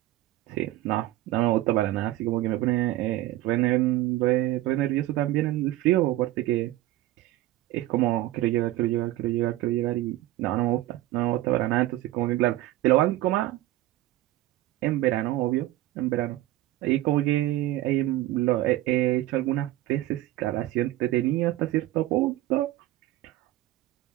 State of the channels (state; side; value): quieter; left; 15.8 dB